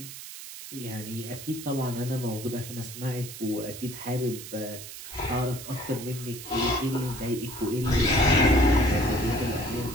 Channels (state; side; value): noise; right; hiss, 12 dB below the sound